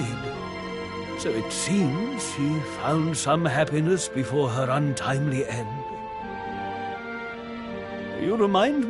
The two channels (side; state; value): both; identical; correlation 1.00